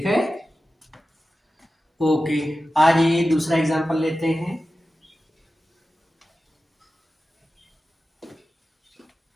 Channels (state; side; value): normal; both; correlation 0.94